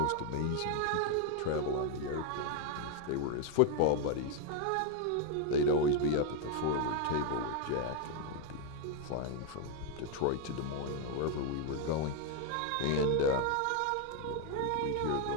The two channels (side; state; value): both; different; correlation 0.01